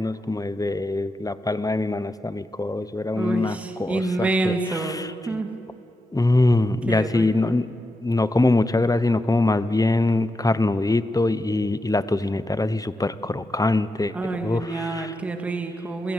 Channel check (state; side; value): normal; both; correlation 0.87